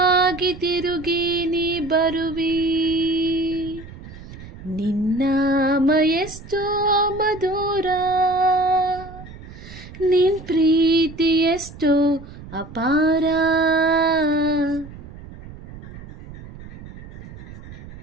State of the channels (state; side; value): noise; right; rumble, 15 dB below the sound